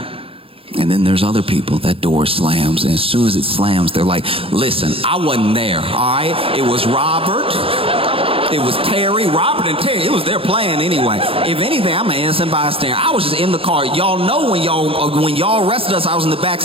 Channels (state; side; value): late; left; 0.27 ms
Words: And then there's other people, that door slams, and as soon as it slams, they're like, listen, I wasn't there, all right? It was Robert, it was Terry, Robert and Terry, it was their plan anyway. If anything, I'm an innocent bystander. I was just in the car. Y'all know when y'all arrested us, I was in the back